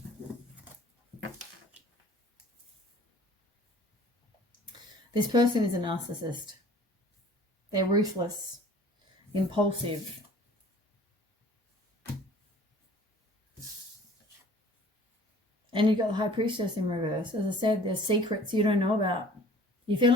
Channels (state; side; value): normal; both; correlation 0.50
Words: This person is a narcissist. They're ruthless, impulsive. And you've got the High Priestess in reverse. As I said, there's secrets you don't know about. You're